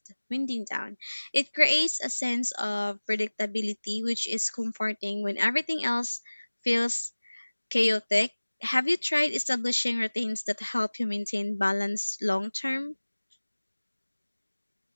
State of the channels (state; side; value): inverted; both; correlation -1.00